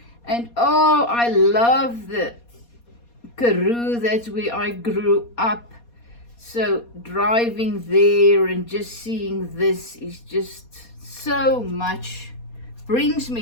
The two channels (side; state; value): right; late; 4.2 ms